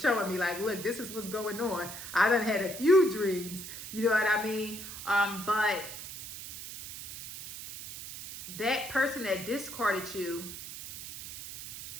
me, like, look, this is what's going on. I done had a few dreams. You know what I mean? But that person that discarded you,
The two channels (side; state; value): right; noise; hiss, 10 dB below the sound